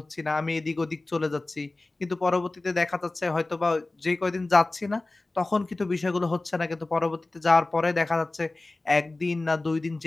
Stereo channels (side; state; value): right; quieter; 3.0 dB